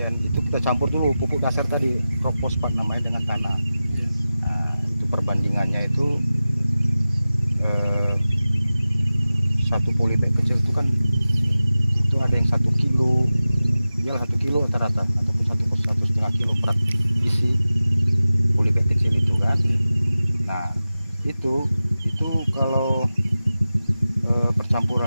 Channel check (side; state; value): both; inverted; correlation -0.95